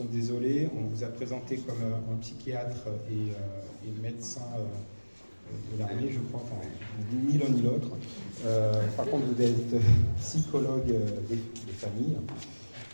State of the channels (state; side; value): inverted; both; correlation -1.00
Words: désolés. On vous a présenté comme un psychiatre et médecin de l'armée, je crois, enfin, ni l'un ni l'autre. Par contre, vous êtes psychologue des familles,